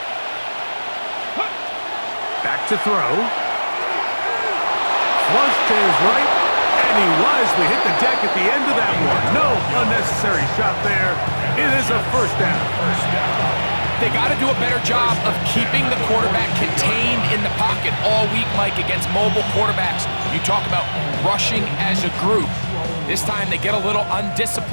Back to throw. Flush to his right, and he wisely hit the deck at the end of that one. No unnecessary shot there. It is a 1st down. They got to do a better job of keeping the quarterback contained in the pocket all week, Mike, against mobile quarterbacks. You talk about rushing as a group. This time they get a little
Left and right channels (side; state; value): both; inverted; correlation -1.00